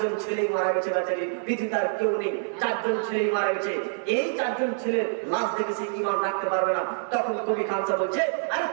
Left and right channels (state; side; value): silent; left; 61 dB below the other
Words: ছেলেই মারা গেছে বেচারি, পৃথিবীতে আর কেউ নেই, 4 জন ছেলেই মারা গেছে। এই 4 জন ছেলে লাশ দেখে সে ঈমান রাখতে পারবে না। তখন কবি খানসা বলছে, আরে